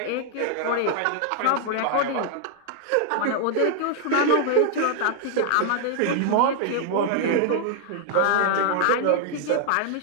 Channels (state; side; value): different; both; correlation 0.00